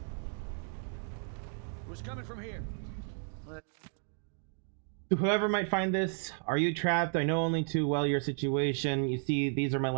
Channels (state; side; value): silent; left; 56 dB below the other